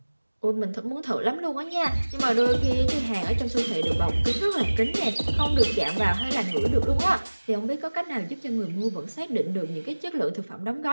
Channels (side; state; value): both; inverted; correlation -1.00